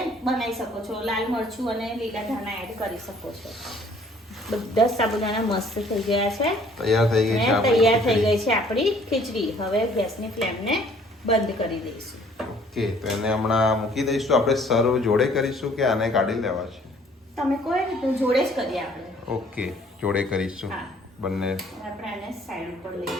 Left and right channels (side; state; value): both; normal; correlation 0.58